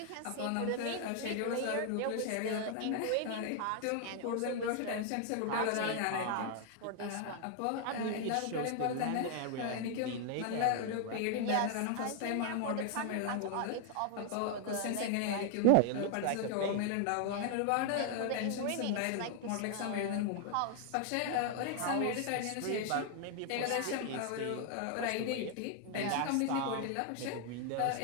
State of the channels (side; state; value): both; different; correlation 0.00